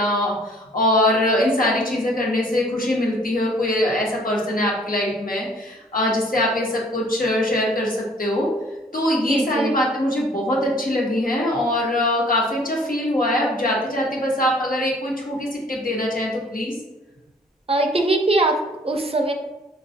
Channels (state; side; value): normal; both; correlation 0.56